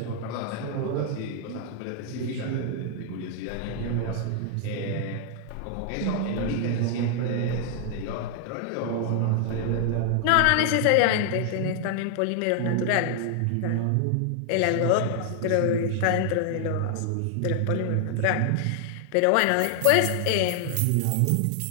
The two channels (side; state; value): both; different; correlation 0.00